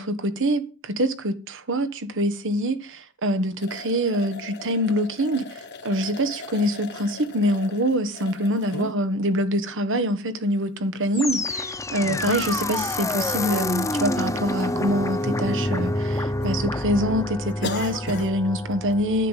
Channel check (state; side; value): normal; both; correlation 0.41